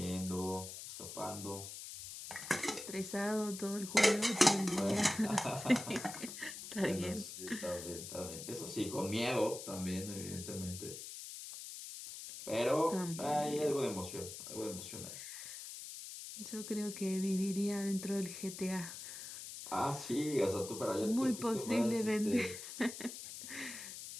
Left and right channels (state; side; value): noise; left; hiss, 10 dB below the sound